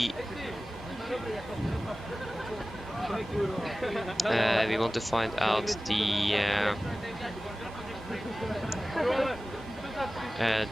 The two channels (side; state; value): both; normal; correlation 0.97